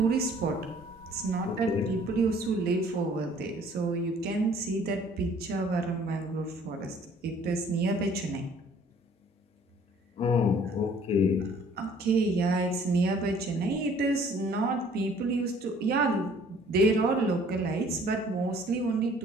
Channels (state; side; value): normal; both; correlation 0.56